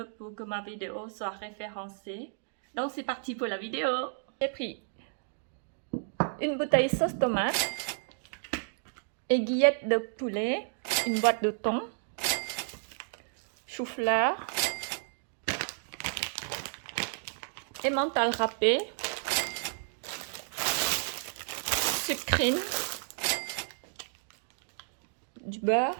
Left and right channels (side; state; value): left; silent; digital silence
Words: pour que ma vidéo soit référencée. Donc c'est parti pour la vidéo. J'ai pris une bouteille sauce tomate, aiguillette de poulet, une boîte de thon, chou-fleur, emmental râpé, sucrine, du